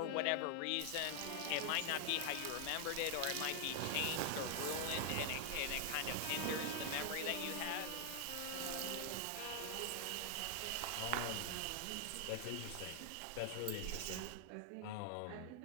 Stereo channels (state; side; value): different; both; correlation 0.00